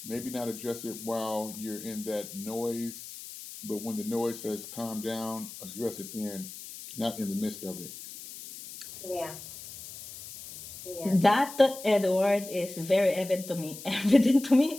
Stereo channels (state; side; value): noise; left; hiss, 13 dB below the sound